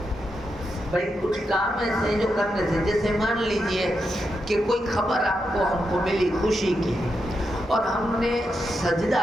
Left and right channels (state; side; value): normal; both; correlation 0.85